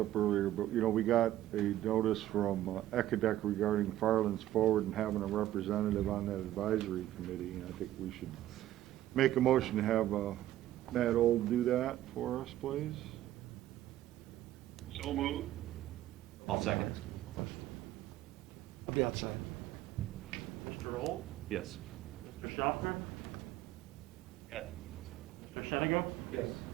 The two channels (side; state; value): left; quieter; 13.7 dB